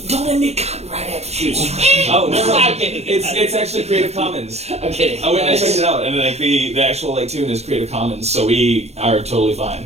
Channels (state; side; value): late; left; 0.31 ms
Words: let me cut right after you. Oh no, I'm kidding. it's actually Creative Commons. I'm kidding. I went and I checked it out, and like the actual like tune is Creative Commons, so we are totally fine.